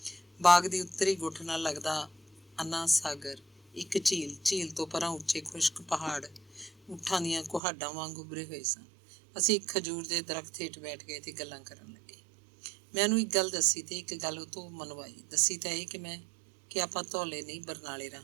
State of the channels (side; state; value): left; drops out; at 7.6 s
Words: ਬਾਗ ਦੀ ਉੱਤਰੀ ਗੁੱਠ ਨਾਲ ਲੱਗਦਾ ਅੰਨਾ ਸਾਗਰ, ਇੱਕ ਝੀਲ ਤੋਂ ਪਰਾਂ ਉੱਚੇ ਖੁਸ਼ਕ ਪਹਾੜ ਊਠਾਂ ਦੀਆਂ ਕੁਹਾੜਾਂ ਵਾਂਗ ਉੱਭਰੇ ਹੋਏ ਸਨ। ਅਸੀਂ ਇੱਕ ਖਜੂਰ ਦੇ ਦਰਖਤ ਹੇਠ ਬੈਠ ਗਏ ਤੇ ਗੱਲਾਂ ਕਰਨ ਲੱਗੇ। ਮੈਂ ਉਹਨੂੰ ਇੱਕ ਗੱਲ ਦੱਸੀ ਤੇ ਇੱਕ ਗੱਲ ਉਹ ਤੋਂ ਮਨਵਾਈ। ਦੱਸੀ ਤਾਂ ਇਹ ਕਿ ਆਪਾਂ ਧੌਲੇ ਨਹੀਂ, ਬਰਨਾਲੇ